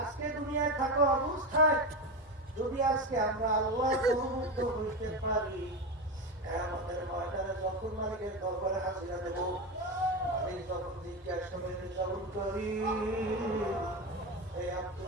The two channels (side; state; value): both; normal; correlation 0.18